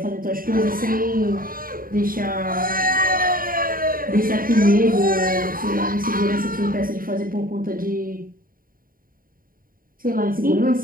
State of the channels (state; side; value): late; left; 0.41 ms